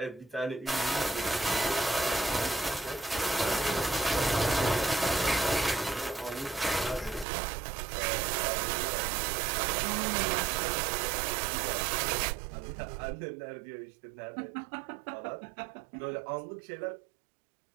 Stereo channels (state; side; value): drops out; left; at 7.2 s